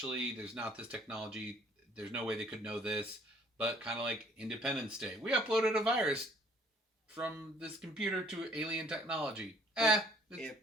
There's not this technology. There's no way they could know this. But kind of like Independence Day, we uploaded a virus from this computer to alien technology. It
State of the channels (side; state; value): both; normal; correlation 0.60